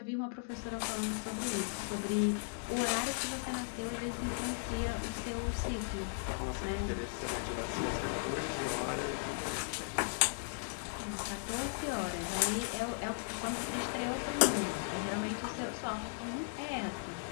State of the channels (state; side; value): silent; right; digital silence